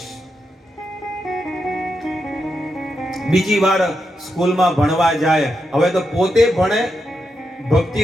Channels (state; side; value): normal; both; correlation 0.85